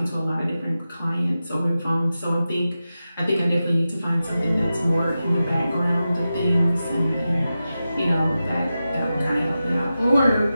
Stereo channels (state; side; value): inverted; both; correlation -0.92